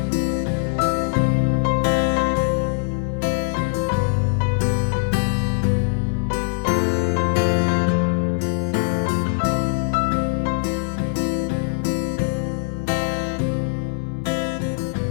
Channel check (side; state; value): right; silent; 64 dB below the other